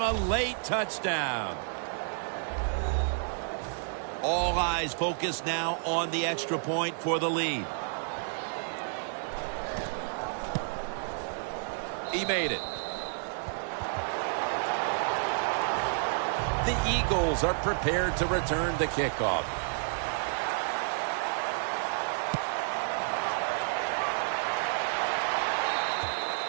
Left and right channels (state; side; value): silent; left; digital silence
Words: A late touchdown. All eyes focused now on the extra point for the lead. He made it. The Eagles are prepared to return the kickoff.